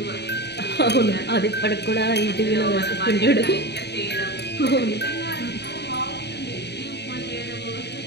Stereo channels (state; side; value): late; right; 0.49 ms